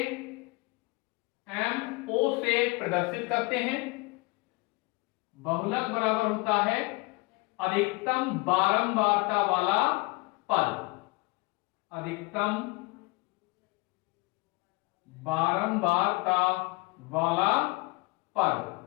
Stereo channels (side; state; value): right; quieter; 26.0 dB